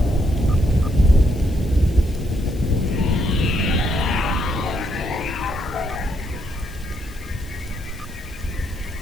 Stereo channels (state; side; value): noise; left; hiss, 22 dB below the sound